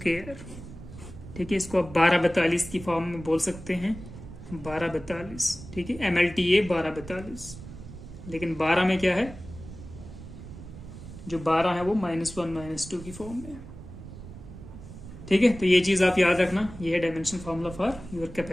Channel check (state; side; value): noise; right; rumble, 14 dB below the sound